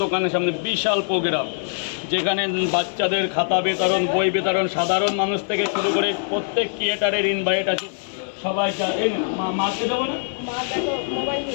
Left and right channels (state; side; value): silent; right; digital silence